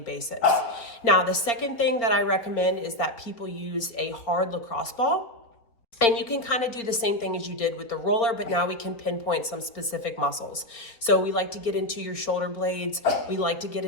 Now, the second thing that I recommend is that people use a hard lacrosse ball. And you can kind of do the same thing as you did with the roller, but now we can pinpoint some specific muscles. So we like to get into your shoulder blades. We like to get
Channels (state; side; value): late; right; 4.3 ms